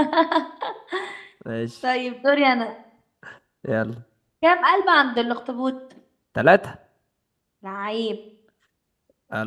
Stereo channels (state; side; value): identical; both; correlation 1.00